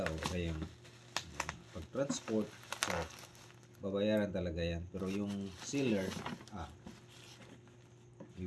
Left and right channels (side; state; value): both; identical; correlation 1.00